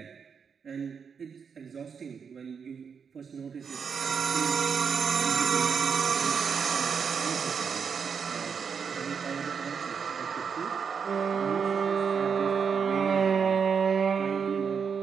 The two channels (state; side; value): quieter; left; 6.4 dB